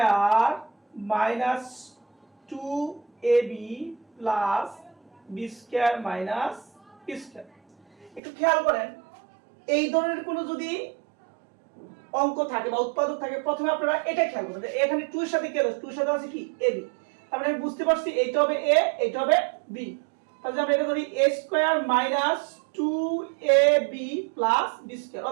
minus 2ab plus b square minus p square. একটু খেয়াল করেন, এই ধরনের কোনো যদি অঙ্ক থাকে বা উৎপাদক থাকে, প্রথমে আপনারা এটা খেয়াল করবেন যে এখানে 2 এর সাথে কি আছে? 2 এর সাথে আছে কি? ab। তার মানে আমি বুঝতে পারছি এইটা হবে a, এইটা হবে b। তাহলে আমরা এটা ধরি a square minus 2ab plus b square,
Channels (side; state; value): left; drops out; at 8.2 s